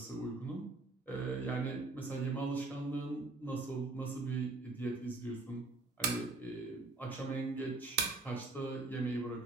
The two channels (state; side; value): quieter; left; 3.4 dB